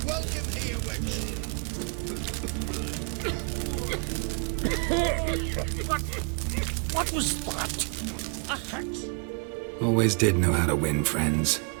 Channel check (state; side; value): quieter; left; 38.7 dB